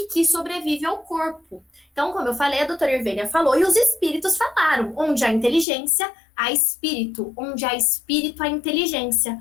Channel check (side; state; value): right; drops out; at 5.7 s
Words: que sobrevive ao corpo. Então, como eu falei, a doutora Irvênia falou e os espíritos falaram. Onde há inteligência, há espírito. Onde há espírito, há inteligência.